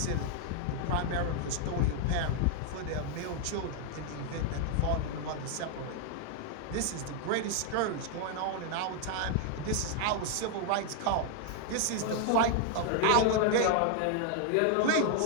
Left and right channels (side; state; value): both; different; correlation 0.00